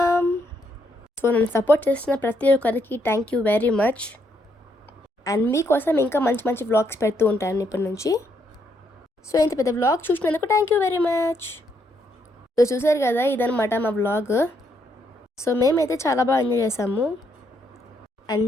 సో నన్ను సపోర్ట్ చేస్తున్న ప్రతి ఒక్కరికి thank you very much. And మీకోసం ఇంకా మంచి మంచి వ్లాగ్స్ పెడుతూ ఉంటాను ఇప్పటి నుంచి. సో ఇంత పెద్ద వ్లాగ్ చూసినందుకు thank you very much. So చూసారు కదా ఇదనమాట మా వ్లాగ్. సో మేమైతే చాలా బాగా ఎంజాయ్ చేసాము. And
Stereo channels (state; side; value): normal; both; correlation 0.75